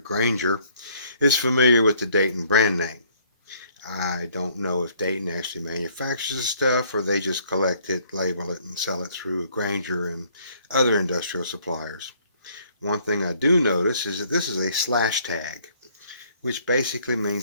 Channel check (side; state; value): both; inverted; correlation -0.62